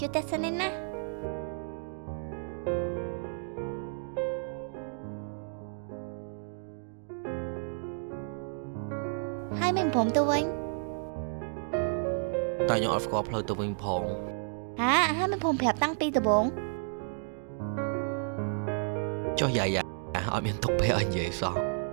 ួយតែសិននេះណាហើយមិនព្រមទៅវិញតែខ្ញុំអត់ស្គាល់ផ្លូវទៅវិញផងហើយមិនព្រមប្រាប់តាំងពីដំបូងចុះយាយអត់មានទុកពេលឲ្យនិយាយសោះ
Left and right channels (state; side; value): silent; left; digital silence